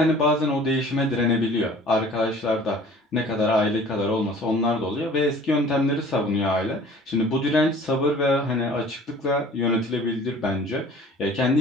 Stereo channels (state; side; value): normal; both; correlation 0.48